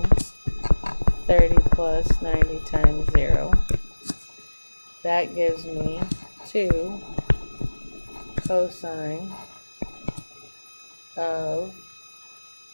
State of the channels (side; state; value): both; inverted; correlation -1.00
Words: 30 plus 90 times 0. That gives me 2 cosine of